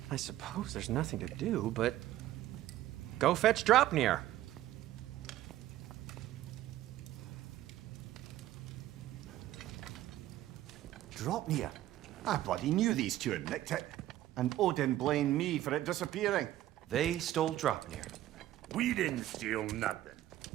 I suppose there's nothing to do, but... Go fetch Dropnir. Dropnir? I bloody knew these two had nicked it. And Odin blamed me for it disappearing. They stole Dropnir. We didn't steal nothing.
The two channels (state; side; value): quieter; left; 14.0 dB